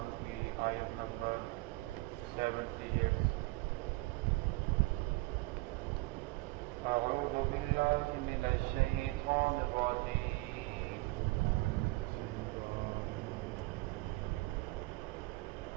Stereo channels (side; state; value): left; quieter; 22.7 dB